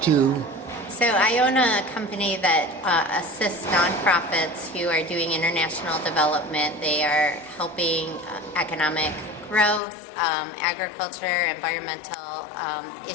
to... So I own a company that assists nonprofits who are doing international development. They are helping economic growth, agriculture, environmental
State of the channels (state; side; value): drops out; right; at 9.8 s